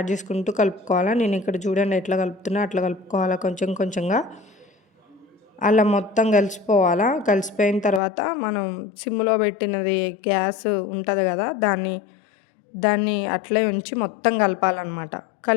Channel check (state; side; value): drops out; right; at 8.0 s